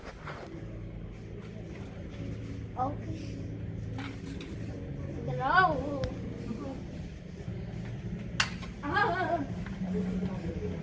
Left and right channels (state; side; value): identical; both; correlation 1.00